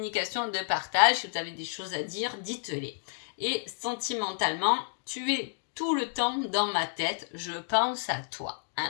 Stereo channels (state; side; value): silent; right; digital silence